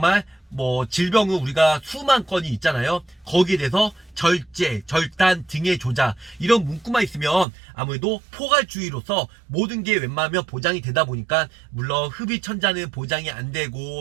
질병은 우리가 수만 건이 있잖아요. 거기에 대해서 절제, 절단, 등의 조작 이런 문구만 있으면 아무래도 포괄주의로서 모든 게 웬만하면 보장이 되다 보니까 물론 흡입천자는 보장이 안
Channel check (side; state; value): left; drops out; at 7.5 s